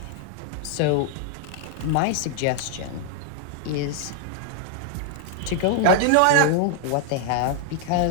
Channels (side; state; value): both; different; correlation 0.00